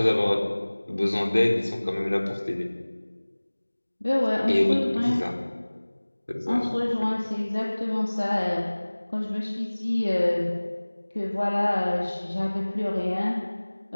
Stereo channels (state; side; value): inverted; both; correlation -1.00